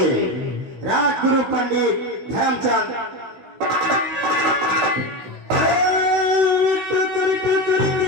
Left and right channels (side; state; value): left; late; 16 ms